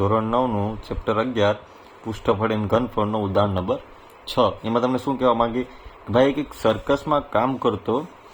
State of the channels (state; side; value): identical; both; correlation 1.00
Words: 9નું ચેપ્ટર 11 પૃષ્ઠફળ એન્ડ ઘનફળનો ઉદાહરણ નંબર 6. એમાં તમને શું કહેવા માંગી કે ભાઈ એક સર્કસમાં કામ કરતો